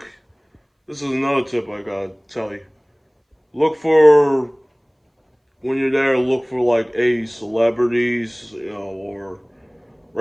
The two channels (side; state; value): both; identical; correlation 1.00